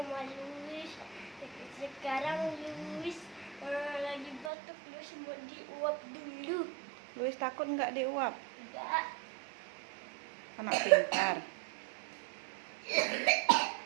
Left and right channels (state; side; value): drops out; left; at 4.5 s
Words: Luis. Sekarang Luis lagi batuk, Luis mau diuap dulu. Luis takut nggak diuap? Enggak. Anak pintar.